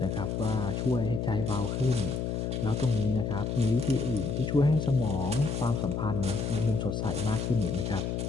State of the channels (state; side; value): noise; left; hum, 1 dB below the sound